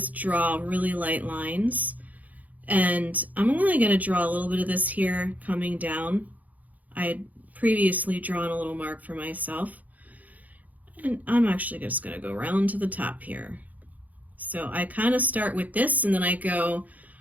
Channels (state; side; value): late; left; 0.078 ms